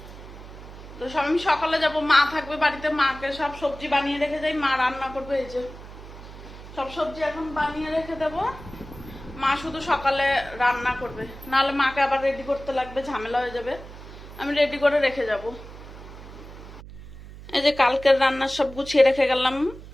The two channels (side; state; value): right; noise; hum, 15 dB below the sound